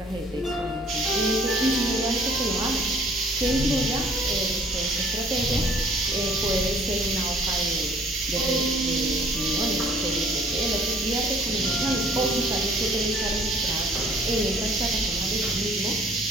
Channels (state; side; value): normal; both; correlation 0.57